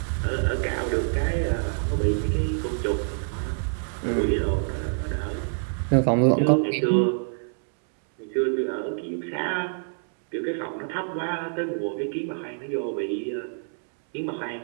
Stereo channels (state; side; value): silent; left; digital silence